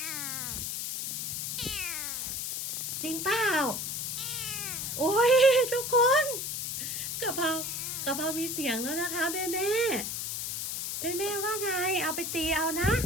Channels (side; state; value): left; noise; hiss, 3 dB below the sound